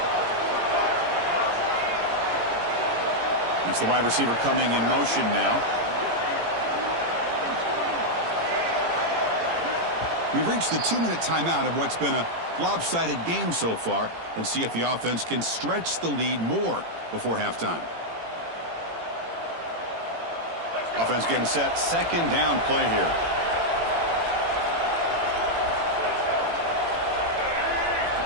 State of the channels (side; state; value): left; late; 18 ms